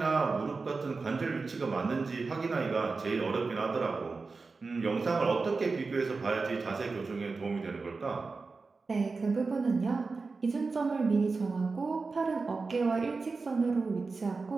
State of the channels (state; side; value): quieter; left; 4.2 dB